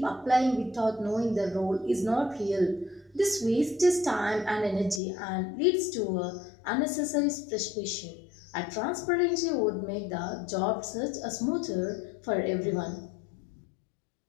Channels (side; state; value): right; drops out; at 5.0 s